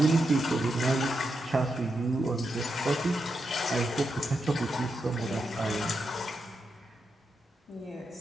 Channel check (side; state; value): both; normal; correlation 0.85